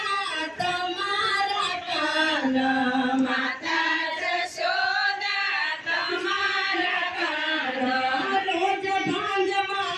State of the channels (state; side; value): identical; both; correlation 1.00